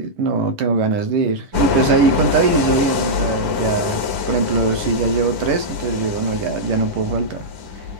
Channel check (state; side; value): late; left; 10 ms